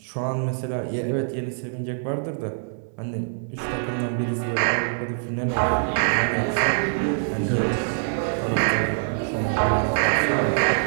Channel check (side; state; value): left; silent; digital silence